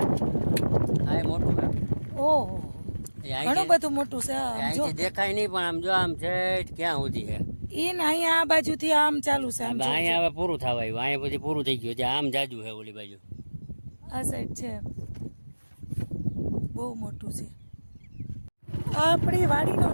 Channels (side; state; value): both; inverted; correlation -1.00